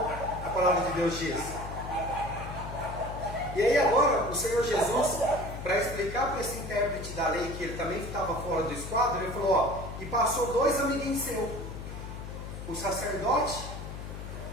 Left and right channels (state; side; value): noise; left; hum, 9 dB below the sound